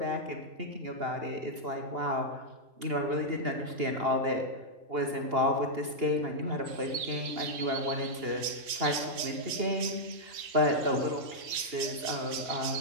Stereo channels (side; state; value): left; late; 3.6 ms